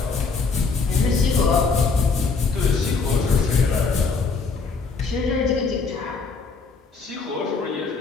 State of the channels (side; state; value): right; quieter; 4.6 dB